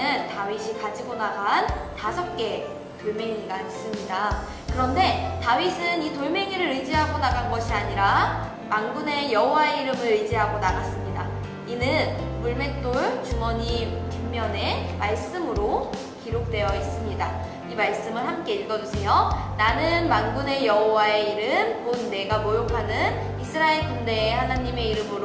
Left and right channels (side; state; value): both; identical; correlation 1.00